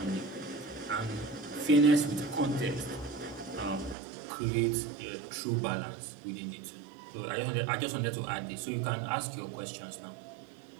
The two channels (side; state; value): left; drops out; at 4.0 s